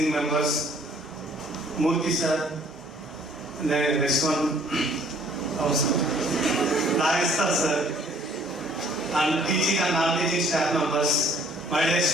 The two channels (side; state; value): both; normal; correlation 0.59